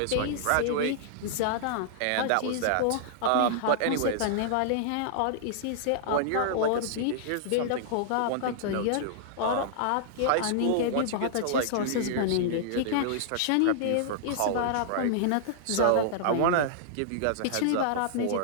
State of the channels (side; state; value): both; different; correlation -0.01